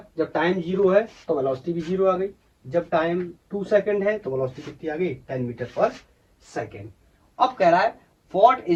जब टाइम 0 है तो वेलोसिटी भी 0 आ गई, जब टाइम 2 सेकंड है तो वेलोसिटी कितनी आ गई 10 मीटर पर सेकेंड। अब कह रहा है what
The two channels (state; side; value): identical; both; correlation 1.00